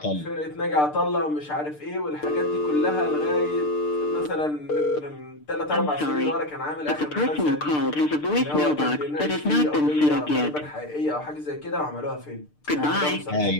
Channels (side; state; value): right; late; 6.7 ms